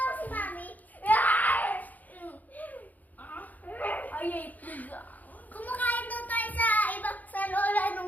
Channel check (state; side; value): late; right; 0.080 ms